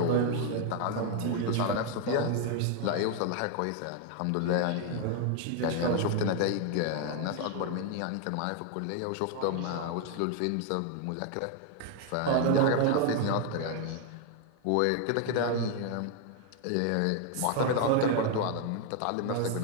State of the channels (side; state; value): both; different; correlation 0.01